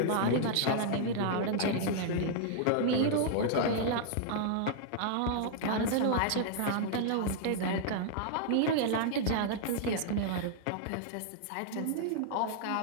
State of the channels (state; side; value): different; both; correlation -0.01